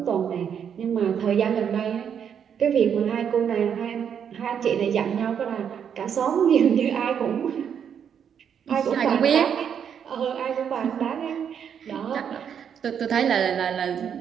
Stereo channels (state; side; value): quieter; left; 8.0 dB